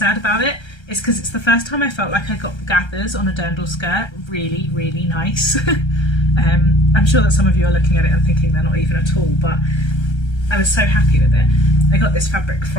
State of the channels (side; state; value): right; late; 1.3 ms